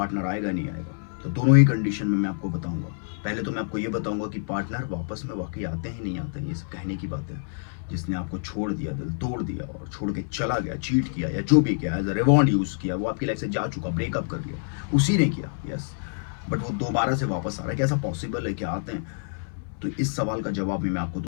आएगा नहीं आएगा, तो दोनों ही कंडीशन में मैं आपको बताऊंगा। पहले तो मैं आपको ये बताऊंगा कि पार्टनर वापस में वाकई आते हैं नहीं आते हैं, ये सब कहने की बात है। जिसने आपको छोड़ दिया, दिल तोड़ दिया और छोड़ के चला गया, चीट किया या जो भी किया, एज अ रिवॉन्ड यूज किया, वो आपकी लाइफ से जा चुका, ब्रेकअप कर लिया, उसी ने किया, यस। बट वो दोबारा से वापस आ रहा है, क्या ऐसा पॉसिबल है? क्या आते हैं? तो इस सवाल का जवाब भी मैं आपको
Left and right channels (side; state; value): right; silent; 58 dB below the other